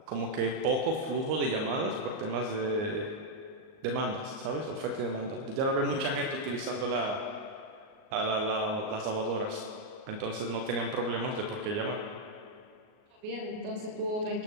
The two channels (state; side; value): late; left; 38 ms